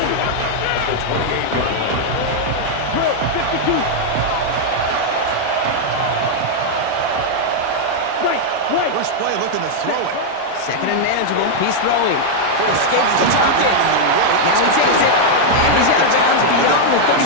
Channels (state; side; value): different; both; correlation -0.01